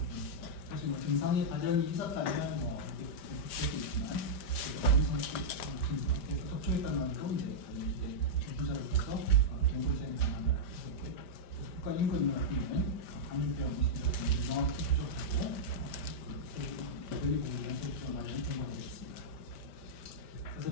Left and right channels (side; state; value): right; late; 5.1 ms